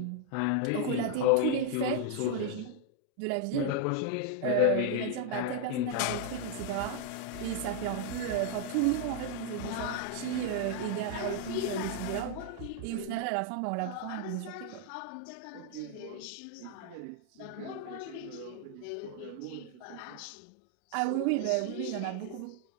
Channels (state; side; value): different; both; correlation 0.00